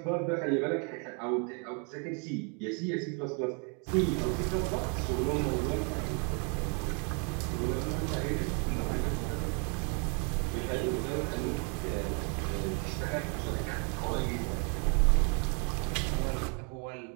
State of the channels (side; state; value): left; quieter; 37.1 dB